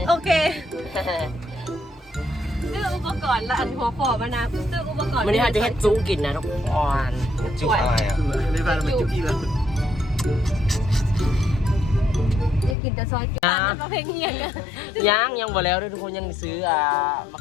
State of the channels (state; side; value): drops out; right; at 12.8 s